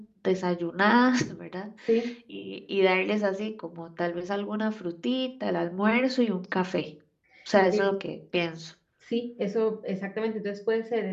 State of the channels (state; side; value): identical; both; correlation 1.00